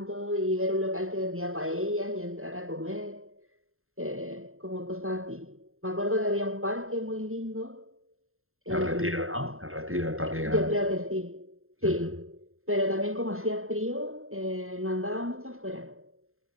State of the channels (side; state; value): left; late; 0.61 ms